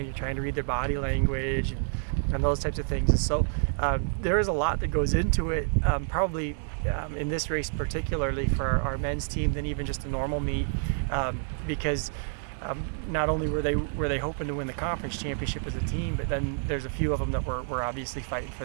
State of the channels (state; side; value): silent; left; digital silence